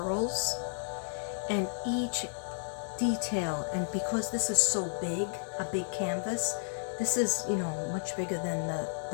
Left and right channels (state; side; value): silent; right; digital silence